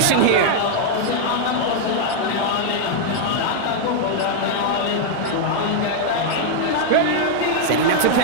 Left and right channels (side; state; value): both; different; correlation -0.01